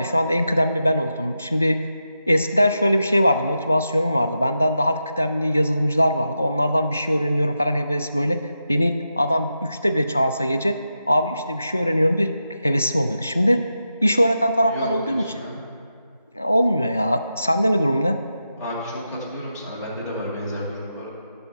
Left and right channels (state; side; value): inverted; both; correlation -0.88